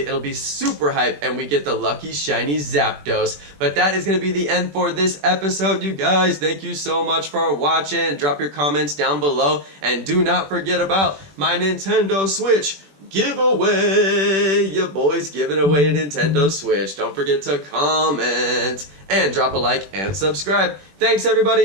be super hype and we get the lucky shiny ZAPDOS. But that is going to be the end for this episode, you guys. Thank you so much for watching. Drop your comments down below, and do not forget about my Nintendo Switch giveaway. Your boy's giving away a Nintendo Switch. Don't forget to comment and drop a like and subscribe. Thanks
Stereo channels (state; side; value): late; left; 21 ms